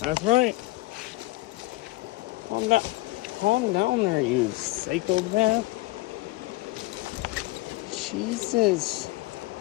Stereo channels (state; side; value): quieter; right; 20.8 dB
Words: right. Calm down. Calm down there, you psychopath. Jesus.